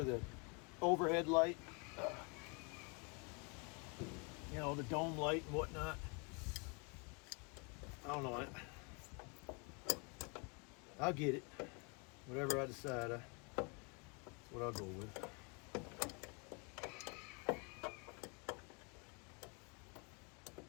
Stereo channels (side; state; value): right; quieter; 33.2 dB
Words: the overhead light. You know, the dome light and whatnot. I don't know. I'll get it. Whatever I decide, that's what I'll go with.